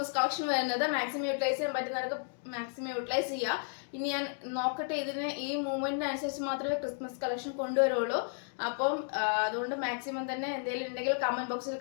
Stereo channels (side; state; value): right; silent; 56 dB below the other